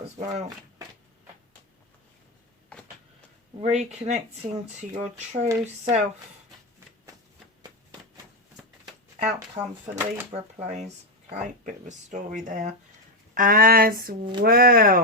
as well. Reconnecting to your true self. Outcome for Libra, please. Okay, bit of a story there as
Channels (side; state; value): both; normal; correlation 0.08